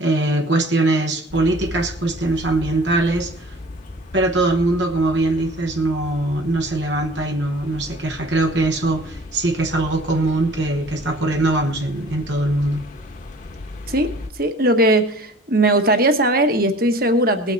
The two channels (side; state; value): both; normal; correlation 0.47